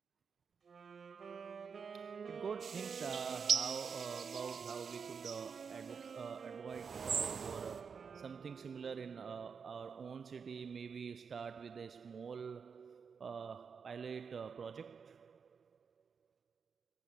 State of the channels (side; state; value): left; quieter; 6.0 dB